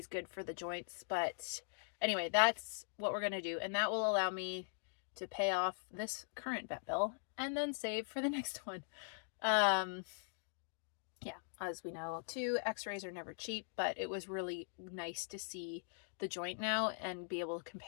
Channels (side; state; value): right; silent; digital silence